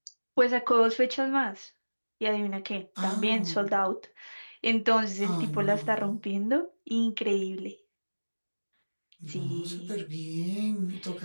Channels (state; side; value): inverted; both; correlation -1.00